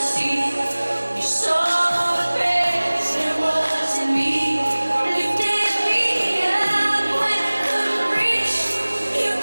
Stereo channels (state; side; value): inverted; both; correlation -1.00